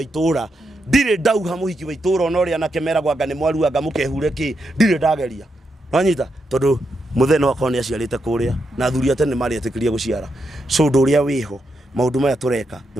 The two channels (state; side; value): normal; both; correlation 0.83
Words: itura ndire ndauha muhiki wa itura ona uri anake meragwa anga ni mwaru anga mukehure ki ndire ndageria wanyita tondu mutheno wakwa ni aciarite kuria na thuri atene mari atikiria guciara so nduria wiho maundu maya tureka